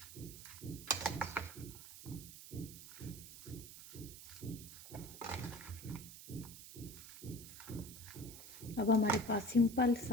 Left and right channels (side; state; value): right; noise; hiss, 14 dB below the sound